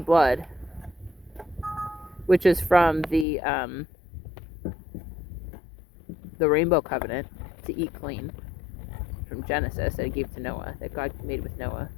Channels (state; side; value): drops out; right; at 3.2 s